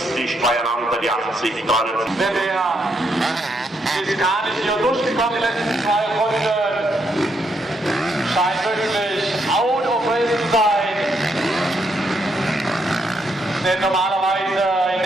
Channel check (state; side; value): normal; both; correlation 0.77